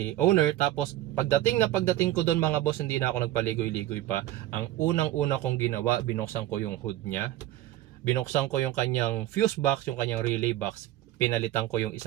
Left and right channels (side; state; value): left; quieter; 14.6 dB